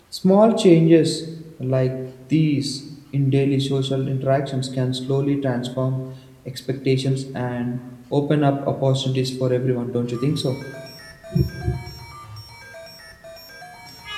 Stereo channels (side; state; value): both; identical; correlation 1.00